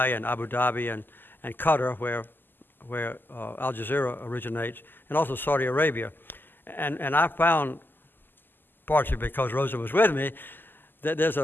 and Abu Dhabi and Qatar, where Al Jazeera originates, and also Saudi Arabia. And I found, partially because Rosa was with me, that there's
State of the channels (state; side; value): late; right; 0.092 ms